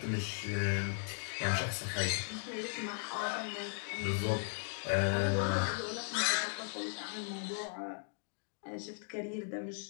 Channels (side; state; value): right; silent; 53 dB below the other